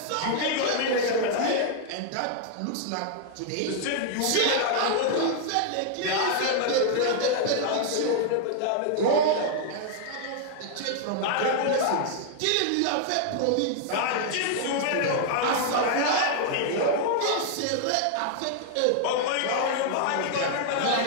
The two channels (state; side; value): different; both; correlation 0.00